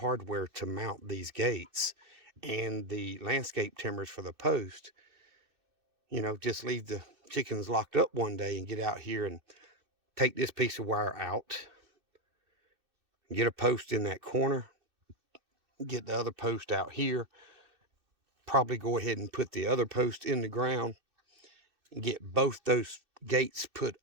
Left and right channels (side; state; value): left; late; 2.6 ms